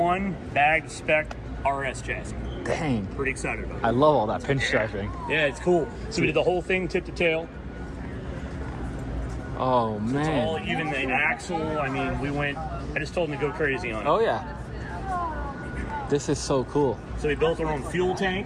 bagged spec RS chassis. Dang. Pretty excited about it. I love all that pinstriping. Yeah, it's cool. So we did the whole thing tip to tail. Oh, It's man. all even the axle. I mean, I just told him to go crazy on it. Oh, yeah. This is so cool. So we built our own fuel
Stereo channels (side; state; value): both; identical; correlation 1.00